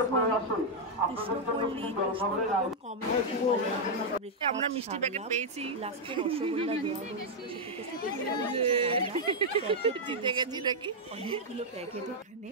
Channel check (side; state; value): both; normal; correlation -0.03